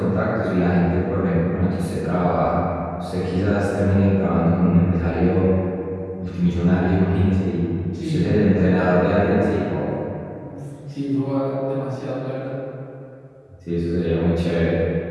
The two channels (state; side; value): identical; both; correlation 1.00